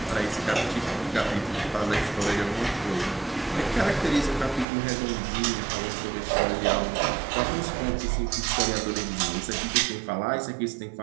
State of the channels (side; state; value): left; drops out; at 4.7 s